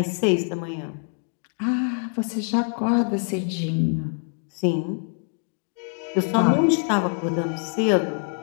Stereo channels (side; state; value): right; quieter; 38.7 dB